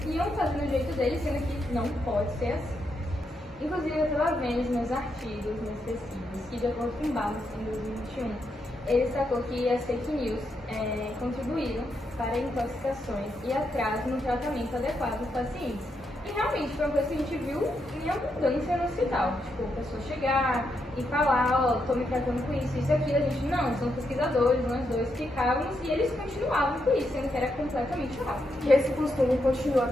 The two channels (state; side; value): normal; both; correlation 0.81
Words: iam fazendo do jeito deles, sendo que não pode ser assim. Inclusive, eu estava vendo os meus artigos, minhas pesquisas, que de acordo com Barros, em 2021, ele destacou que as fake news contribuíram para intoxicações e atraso no tratamento adequado dos pacientes. E realmente foi uma coisa que a gente viu em abundância no hospital. Tipo, a pessoa chegar e falar, ó, tô me tratando com isso e aquilo. A gente, não, são pesquisadores, nós dois ficávamos e eles continuavam com isso, sendo que era completamente errado. E esse costume continua